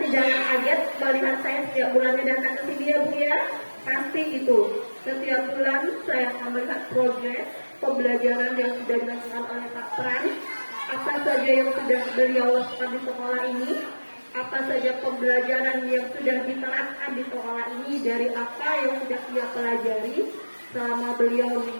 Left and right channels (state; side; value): inverted; both; correlation -1.00